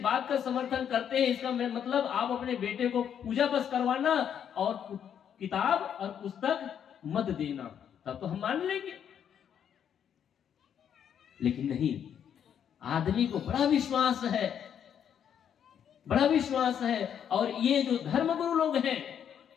बात का समर्थन करते हैं इसका मतलब आप अपने बेटे को पूजा बस करवाना और किताब और पुस्तक मत देना, तब तो हम मान लेंगे। लेकिन नहीं, आदमी को बड़ा विश्वास है, बड़ा विश्वास है। और ये जो धर्मगुरु लोग हैं,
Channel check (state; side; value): quieter; right; 8.7 dB